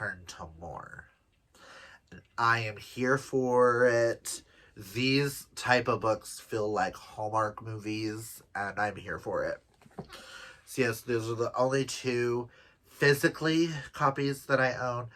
to more. And I am here for it. These type of books feel like Hallmark movies, and I'm here for it. So yes, those are the only 2 physically copies that I own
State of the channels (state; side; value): identical; both; correlation 1.00